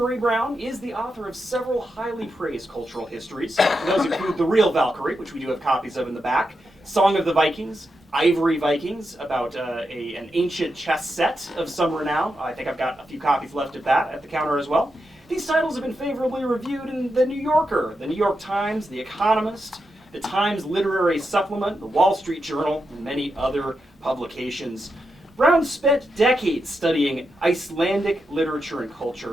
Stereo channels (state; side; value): normal; both; correlation 0.86